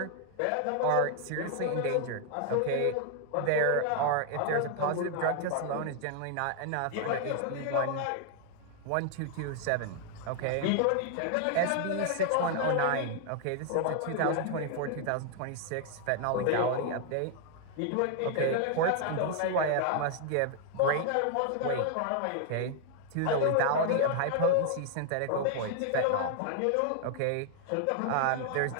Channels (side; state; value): both; different; correlation 0.00